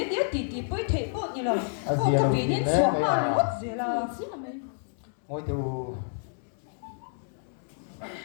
tiếc tì bơi thể bộ như là ô cái vị nên xuống mà mất gì là si la me ngồi tiêu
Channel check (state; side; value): silent; right; 59 dB below the other